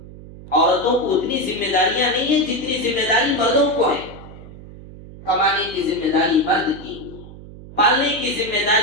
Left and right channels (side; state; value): right; noise; hum, 17 dB below the sound